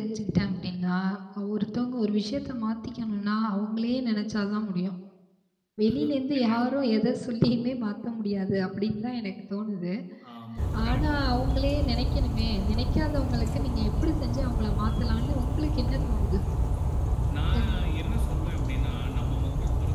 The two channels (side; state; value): both; identical; correlation 1.00